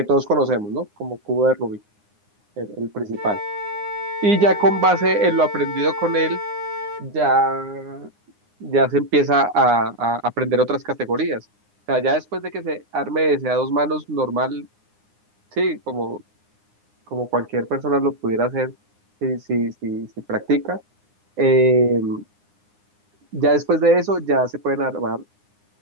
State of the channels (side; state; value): left; late; 9.7 ms